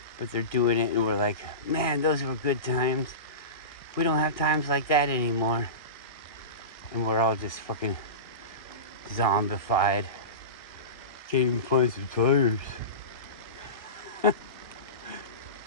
but they're doing it, and we're like, man, those were good times. We don't have times like that anymore. And we're all just fucking zombified. Can't even find some tires.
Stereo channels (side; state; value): right; late; 1.6 ms